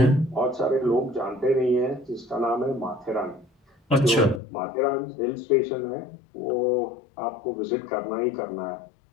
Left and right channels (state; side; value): drops out; right; at 4.4 s